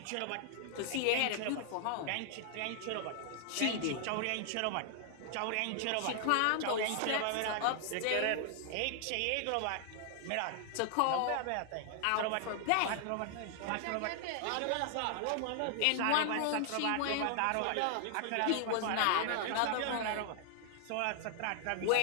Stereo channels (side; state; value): both; different; correlation 0.00